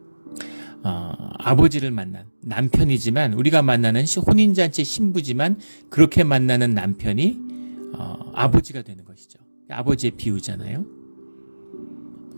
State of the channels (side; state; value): both; inverted; correlation -1.00